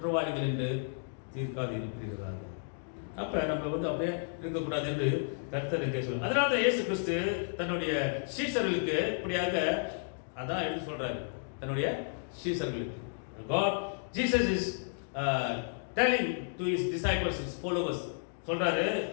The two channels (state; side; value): silent; right; digital silence